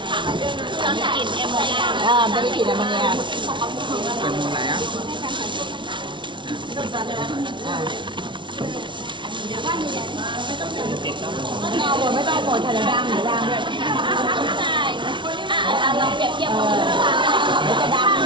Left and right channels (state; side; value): late; left; 0.24 ms